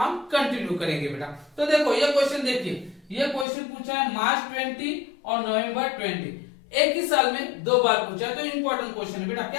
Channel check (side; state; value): right; drops out; at 3.5 s